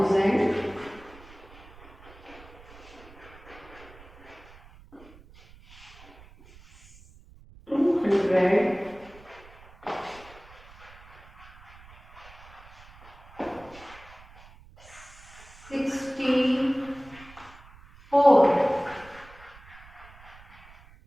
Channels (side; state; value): right; noise; rumble, 21 dB below the sound